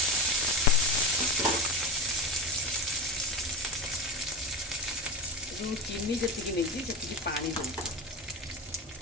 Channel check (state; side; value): normal; both; correlation 0.21